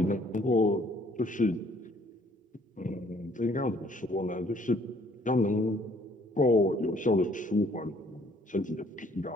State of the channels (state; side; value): normal; both; correlation 0.62